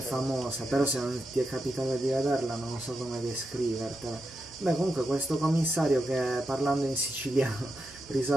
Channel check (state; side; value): normal; both; correlation 0.87